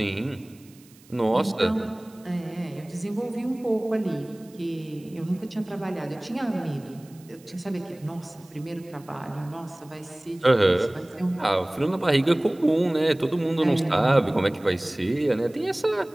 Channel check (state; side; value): noise; right; hiss, 27 dB below the sound